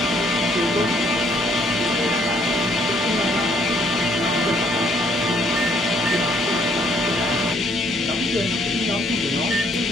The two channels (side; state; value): both; normal; correlation 0.67